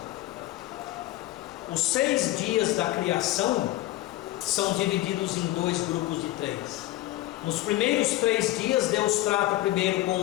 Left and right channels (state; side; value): quieter; right; 16.2 dB